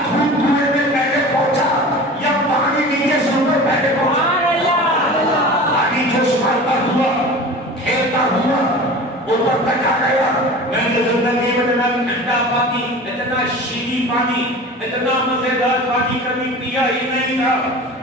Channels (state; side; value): normal; both; correlation 0.37